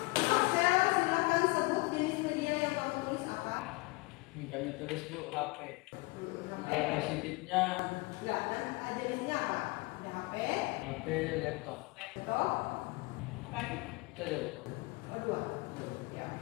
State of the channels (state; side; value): quieter; right; 25.2 dB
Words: Marcel silakan sebut jenis media yang kamu tulis apa? Kami tulis Bu HP. HP. Positifnya Enggak, dan jenisnya apa? Ada HP, HP laptop. laptop, Itu aja Bu. oh 2. Ya,